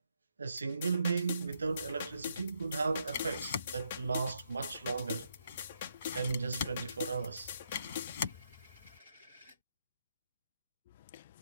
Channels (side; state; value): both; inverted; correlation -0.77